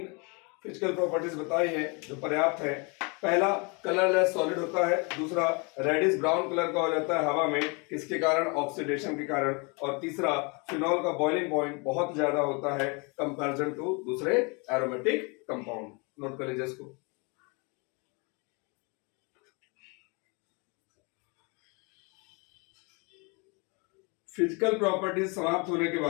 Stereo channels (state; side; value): quieter; right; 31.3 dB